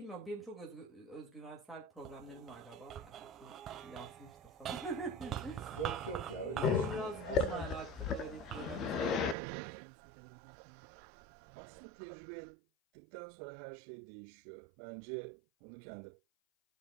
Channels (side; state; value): left; drops out; at 9.3 s